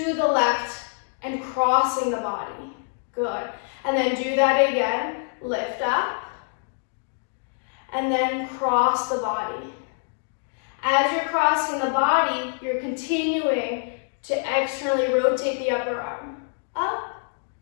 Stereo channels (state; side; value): silent; right; digital silence